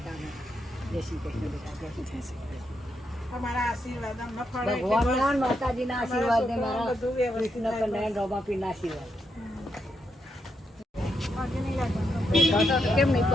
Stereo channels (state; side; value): normal; both; correlation 0.82